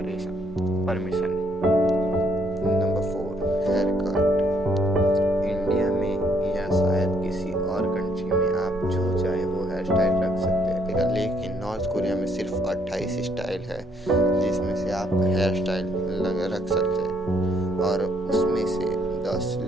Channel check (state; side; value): normal; both; correlation 0.69